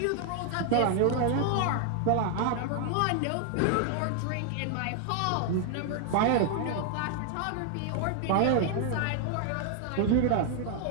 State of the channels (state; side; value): different; both; correlation 0.00